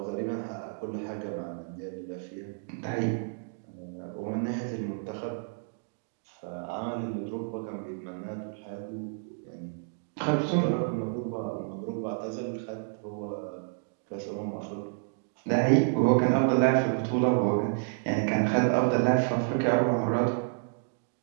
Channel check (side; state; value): left; silent; digital silence